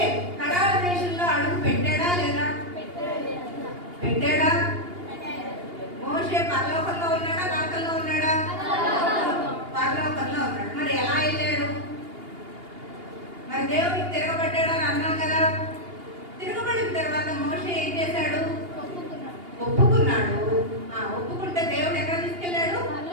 కనాను దేశంలో అడుగు పెట్టాడా లేదా? పెట్టాడా? మోషే పరలోకంలో ఉన్నాడా, నరకంలో ఉన్నాడా? పరలోకంలో ఉన్నాడు. మరి ఎలా వెళ్ళాడు? మరి దేవుడికి తిరగబడ్డాడని అన్నాం కదా. తిరగబడిన తర్వాత మోషే ఏం చేశాడు? ఒప్పుకున్నాడు. ఒప్పుకుంటే దేవుడు ఎక్కడ తీసుకెళ్ళాడు?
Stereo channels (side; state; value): left; late; 2.8 ms